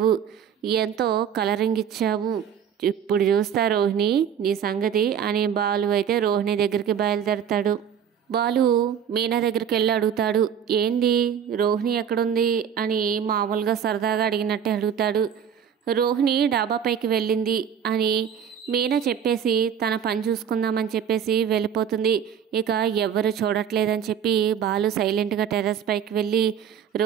ఎంతో కలరింగ్ ఇచ్చావు, ఇప్పుడు చూస్తా రోహిణి నీ సంగతి అని బాలు అయితే రోహిణి దగ్గరికి బయలుదేరతాడు. బాలు మీనా దగ్గరికి వెళ్ళి అడుగుతాడు, ఏంది రోహిణి ఎక్కడుంది అని మామూలుగా సరదాగా అడిగినట్టే అడుగుతాడు. రోహిణి డాబాపైకి వెళ్ళింది అని మీనా చెప్పేసి తన పని చూసుకుందామని చెప్పేసి వెళ్ళిపోతుంది. ఇక ఎవ్వరు చూడట్లేదని చెప్పి బాలు సైలెంట్గా టెర్రస్ పైకి వెళ్ళి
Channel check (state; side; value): quieter; left; 8.3 dB